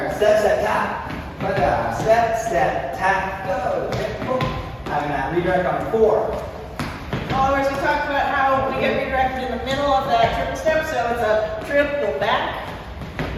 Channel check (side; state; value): both; identical; correlation 1.00